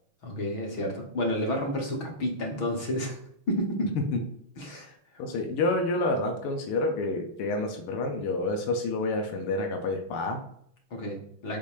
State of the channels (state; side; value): late; right; 6.2 ms